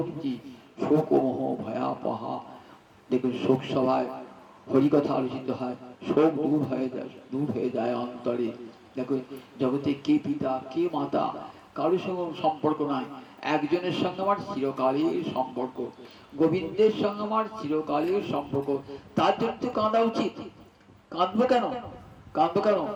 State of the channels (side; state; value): both; identical; correlation 1.00